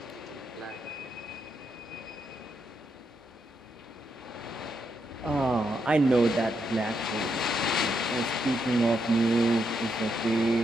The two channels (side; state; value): both; normal; correlation 0.80